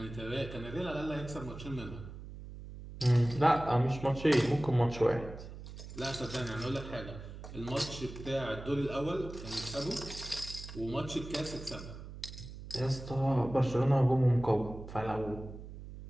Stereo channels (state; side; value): noise; right; hum, 12 dB below the sound